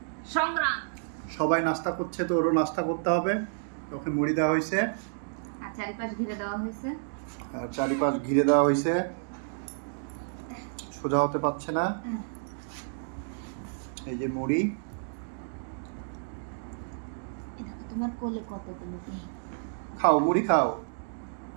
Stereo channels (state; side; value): silent; left; digital silence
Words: সংগ্রাম। সবাই নাস্তা করছে তো ওরও নাস্তা করতে হবে। ওকে মুড়ি দেওয়া হয়েছে আর চারিপাশ ঘিরে দেওয়া হয়েছে, সোজা হতে পারছে না। এই যে মুড়ি, দেখো তোমার কোলে কতগুলো। খাও মুড়ি খাও,